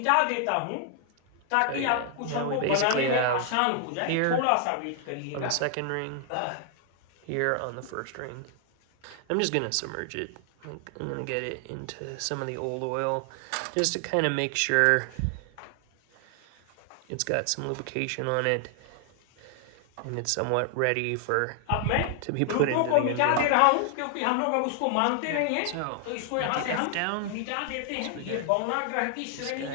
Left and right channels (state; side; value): different; both; correlation 0.00